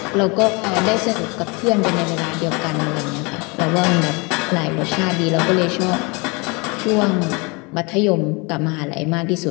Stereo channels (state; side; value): quieter; right; 28.7 dB